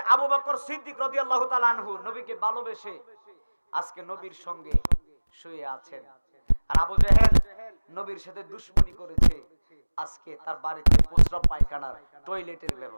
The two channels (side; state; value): both; inverted; correlation -1.00